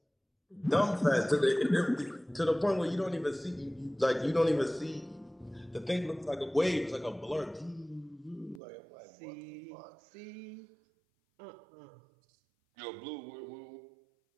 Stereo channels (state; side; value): drops out; left; at 8.6 s